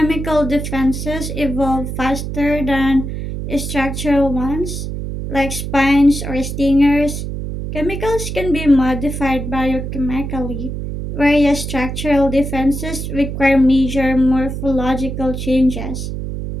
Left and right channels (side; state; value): right; noise; hum, 5 dB below the sound